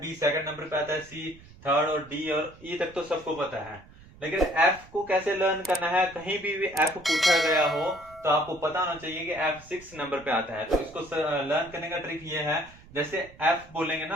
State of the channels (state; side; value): noise; right; rumble, 22 dB below the sound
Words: सेकंड नंबर पे आता है, सी थर्ड और डी और ई तक तो सबको पता है। लेकिन एफ को कैसे लर्न करना है, कहीं भी एफ पूछा गया हो तो आपको पता होना चाहिए कि एफ 6 नंबर पे आता है। तो इसको लर्न करने का ट्रिक ये है, जैसे एफ बोलेंगे